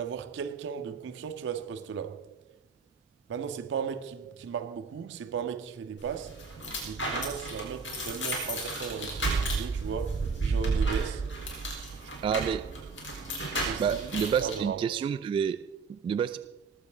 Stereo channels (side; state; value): left; quieter; 4.9 dB